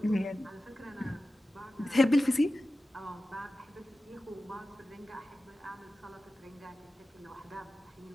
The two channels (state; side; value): normal; both; correlation 0.94